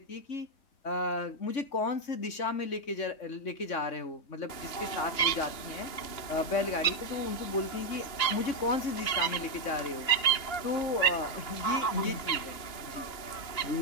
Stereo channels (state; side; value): late; right; 3.0 ms